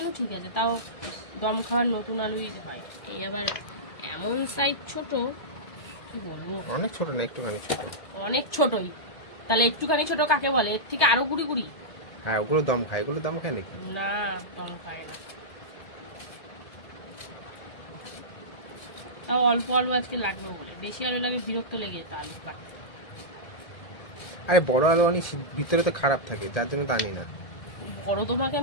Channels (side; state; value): right; late; 1.7 ms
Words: ঠিক আছে, তাও দম খাওয়ার নতুন আলুই হয়। এই আবার এমন সাইজ ছোট, কি বলবো, অনেক ছোট না, একটুখানি ছোট। অনেক ছোটই, তাহলে একটুখানি ছোট কাকে বলে? এর থেকে আরো গুড়ি গুড়ি। হ্যাঁ, ওগুলো দম খায়, এগুলো দম খায় নাকি? না, দম খায় না। তাও অল্প আলু আজকে লাগবে বলে, বেশি আলু লাগে বিরক্ত লেগে যেত আলু কাটতে। আরে বড় আলু অনেক ভিতরে তো খারাপ থাকে, যার জন্য তো আনি না। বড় তোমাকে